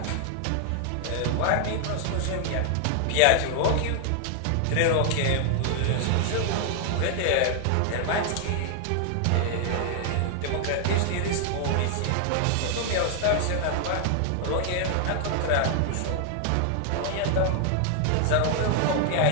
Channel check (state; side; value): different; both; correlation 0.00